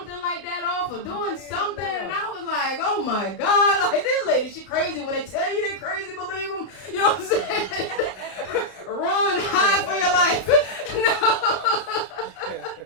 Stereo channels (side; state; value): right; late; 32 ms